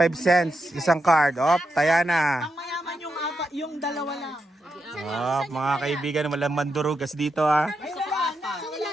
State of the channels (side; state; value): both; normal; correlation 0.85